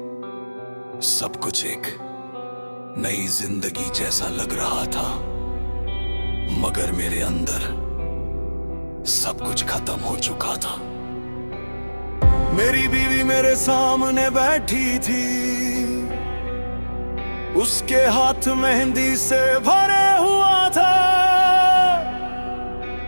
सब कुछ एक नई जिंदगी जैसा लग रहा था, मगर मेरे अंदर सब कुछ खत्म हो चुका था। मेरी बीवी मेरे सामने बैठी थी, उसके हाथ मेहंदी से भरे हुआ था।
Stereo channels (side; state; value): both; inverted; correlation -1.00